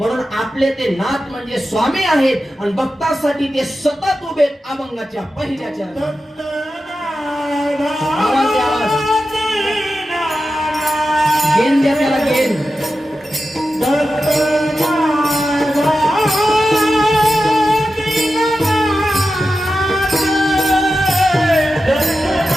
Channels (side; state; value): both; normal; correlation 0.92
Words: आपले ते नाथ म्हणजे स्वामी आहेत. आणि भक्तासाठी ते सतत उभे अभंगाच्या पहिल्या चरणात. गेन द्या त्याला गेन.